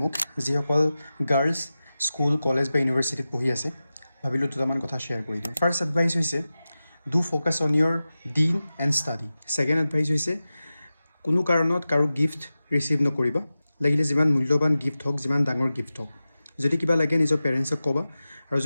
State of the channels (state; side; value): inverted; both; correlation -0.94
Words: মোক যিসকল গাৰ্লছ স্কুল কলেজ বা ইউনিভাৰ্চিটিত পঢ়ি আছে ভাবিলোঁ দুটামান কথা শ্বেয়াৰ কৰি দিওঁ ফাৰ্ষ্ট এডভাইচ হৈছে ডু ফ'কাছ অন ইয়ৰ ডিন এণ্ড ষ্টাডি ছেকেণ্ড এডভাইচ হৈছে কোনো কাৰণত কাৰো গিফ্ট ৰিচিভ নকৰিবা লাগিলে যিমান মূল্যৱান গিফ্ট হওক যিমান ডাঙৰ গিফ্ট হওক যদি কিবা লাগে নিজৰ পেৰেণ্টছক ক'বা আৰু